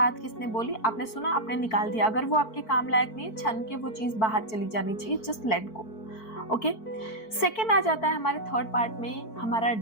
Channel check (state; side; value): late; right; 4.5 ms